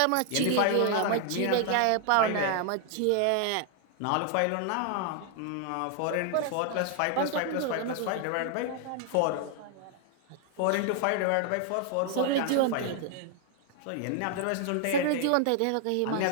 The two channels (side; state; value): both; different; correlation 0.00